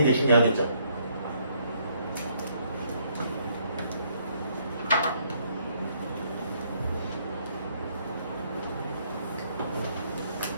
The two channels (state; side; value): inverted; both; correlation -0.69